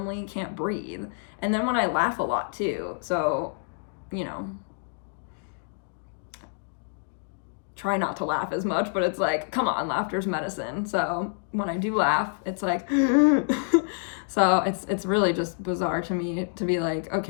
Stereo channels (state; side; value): silent; right; digital silence